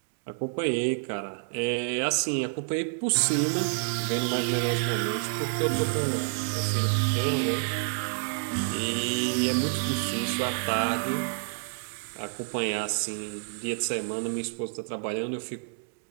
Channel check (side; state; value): left; silent; digital silence